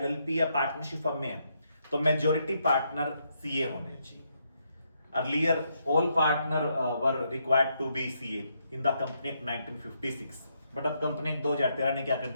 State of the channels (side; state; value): both; inverted; correlation -0.77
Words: या पार्टनरशिप फर्म में है, तो मेजॉरिटी पार्टनर सीए होने चाहिए। Earlier all partner were required to be CA in the company act 1956, बट अब कंपनी 2013 ने क्या कर